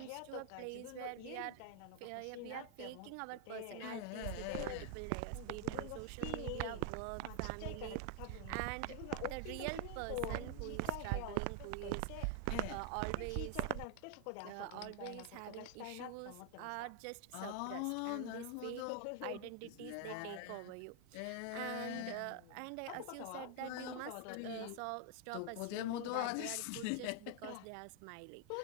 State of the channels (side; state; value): both; different; correlation 0.00